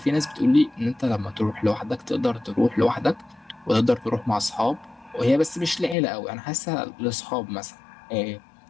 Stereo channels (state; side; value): drops out; right; at 6.0 s